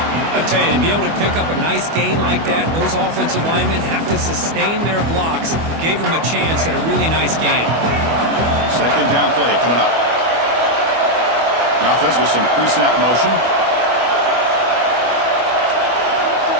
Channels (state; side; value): late; left; 25 ms